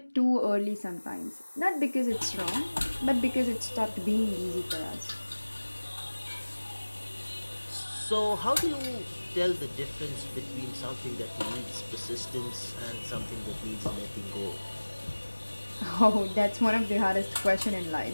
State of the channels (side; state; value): both; inverted; correlation -1.00